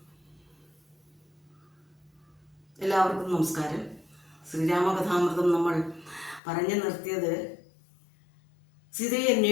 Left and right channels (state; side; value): drops out; right; at 6.4 s